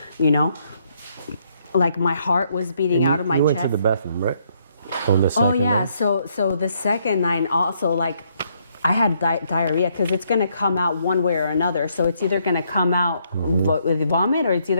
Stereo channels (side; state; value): both; inverted; correlation -0.72